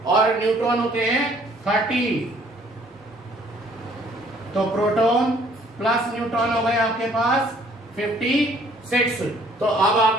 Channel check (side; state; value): both; normal; correlation 0.60